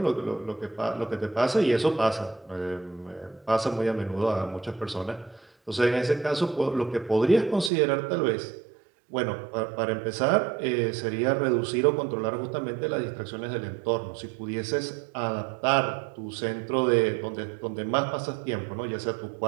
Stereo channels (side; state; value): left; drops out; at 7.7 s